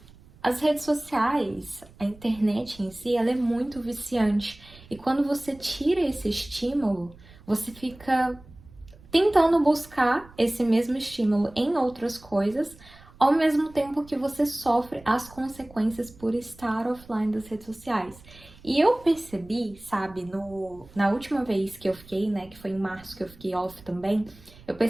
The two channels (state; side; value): noise; right; rumble, 23 dB below the sound